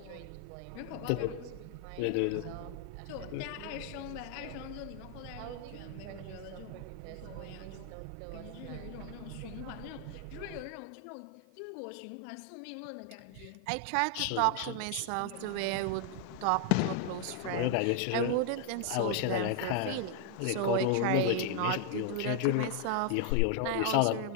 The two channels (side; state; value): both; different; correlation 0.00